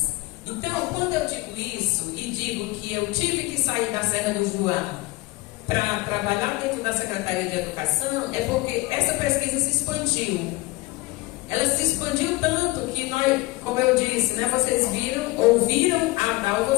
Então, quando eu digo isso e digo que eu tive que sair da Serra do Juá para trabalhar dentro da Secretaria de Educação, é porque essa pesquisa se expandiu. Ela se expandiu tanto que nós, como eu disse, né, vocês ouviram a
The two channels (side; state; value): right; quieter; 22.1 dB